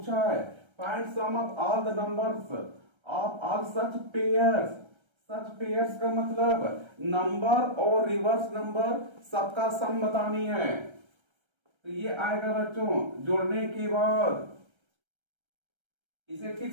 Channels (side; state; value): left; late; 1.3 ms